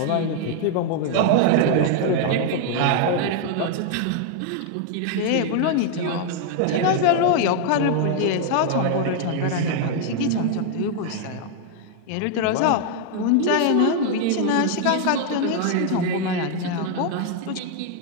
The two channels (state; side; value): different; both; correlation 0.00